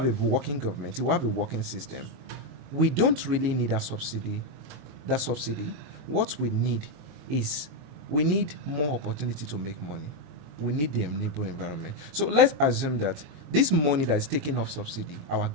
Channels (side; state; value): left; late; 22 ms